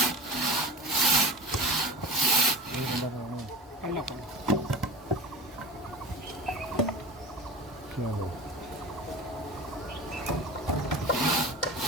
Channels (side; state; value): both; normal; correlation 0.33